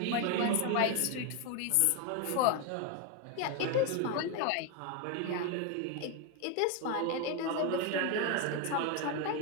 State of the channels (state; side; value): different; both; correlation 0.01